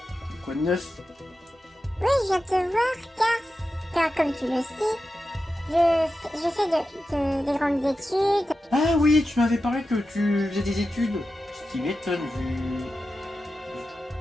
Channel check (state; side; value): normal; both; correlation 0.91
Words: Quoi de neuf? Oui, je viens te voir car comme tu le sais, je fais des grandes études. Ah oui, tu m'avais parlé que tu faisais des études. Ce qui m'étonne